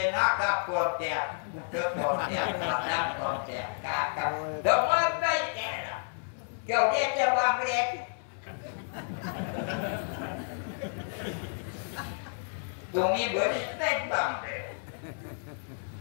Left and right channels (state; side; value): silent; right; 57 dB below the other